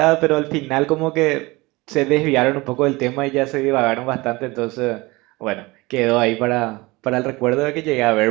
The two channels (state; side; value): quieter; left; 22.6 dB